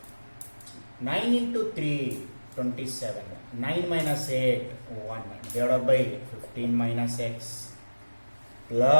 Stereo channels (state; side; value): inverted; both; correlation -1.00